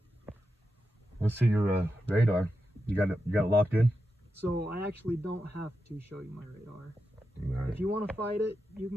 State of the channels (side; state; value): both; normal; correlation 0.88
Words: Let's see your radar. You got it locked in? So I actually don't have to show you my radar. Right. If you want to fight it, you